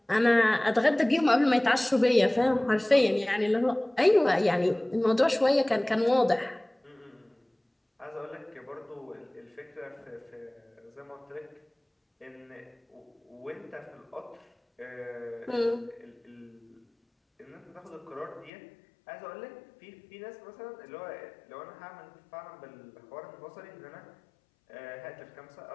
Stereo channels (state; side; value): drops out; right; at 18.5 s